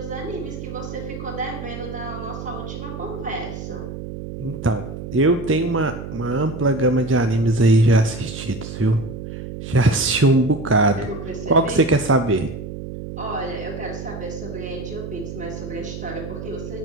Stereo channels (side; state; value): right; noise; hum, 9 dB below the sound